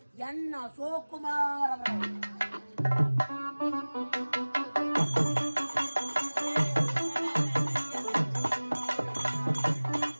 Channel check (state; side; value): inverted; both; correlation -1.00